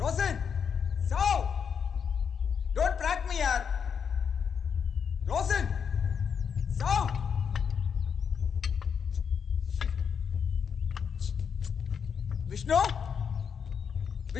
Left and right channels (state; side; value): quieter; right; 6.9 dB